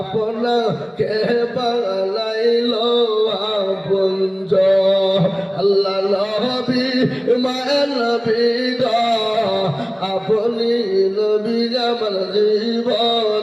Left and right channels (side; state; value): both; identical; correlation 1.00